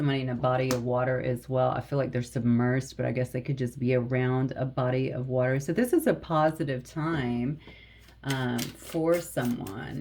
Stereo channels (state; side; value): identical; both; correlation 1.00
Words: in a body of water as well. I feel like they're submersed, but I guess they could just be around a body of water. So this is a positive time for